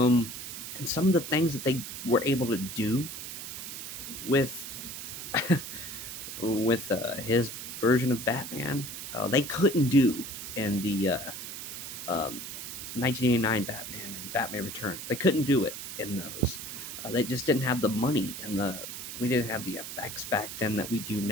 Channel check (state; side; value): noise; right; hiss, 8 dB below the sound